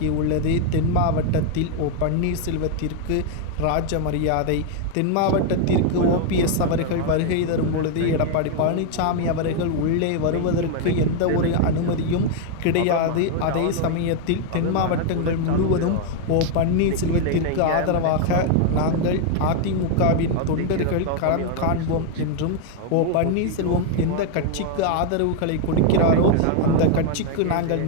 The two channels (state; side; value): different; both; correlation 0.00